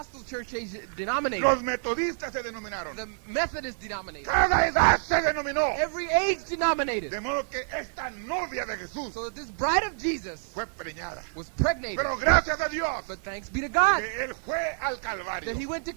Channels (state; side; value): silent; left; digital silence